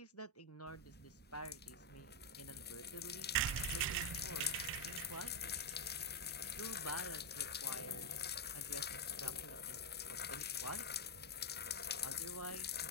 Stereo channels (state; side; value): normal; both; correlation 0.02